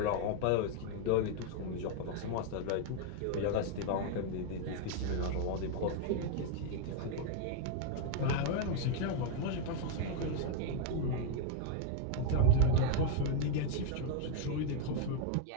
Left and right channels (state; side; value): different; both; correlation 0.00